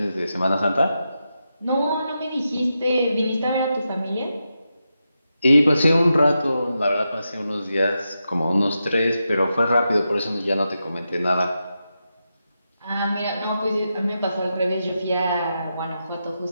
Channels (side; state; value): both; inverted; correlation -0.88